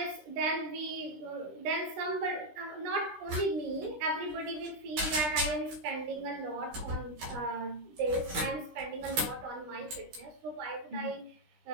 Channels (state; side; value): late; left; 16 ms